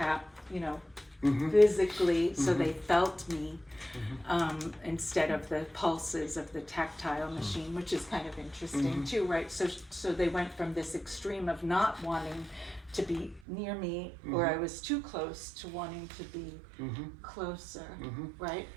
you know, physically, so they felt me, instead of the pulses of the tactile machine, which is kind of interesting too, right? So they went from this extreme of not wanting to be near me, or I was too close, to wanting to be closer, right?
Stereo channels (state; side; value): drops out; left; at 13.4 s